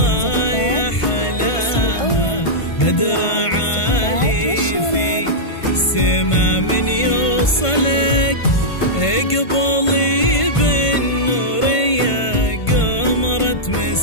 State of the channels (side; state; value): right; late; 1.5 ms